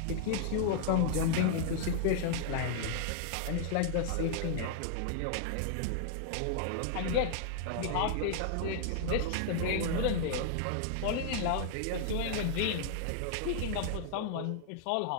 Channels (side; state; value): both; different; correlation -0.01